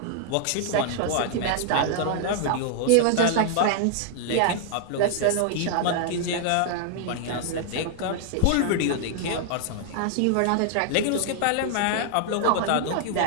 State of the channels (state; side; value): different; both; correlation 0.00